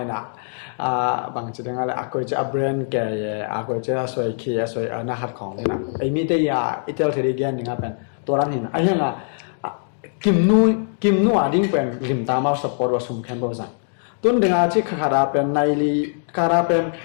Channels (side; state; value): right; silent; digital silence